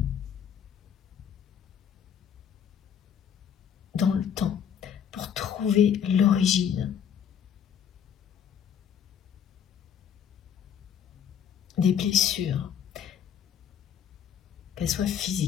dans le temps pour trouver l'origine des blessures, qu'elles soient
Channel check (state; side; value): quieter; right; 8.4 dB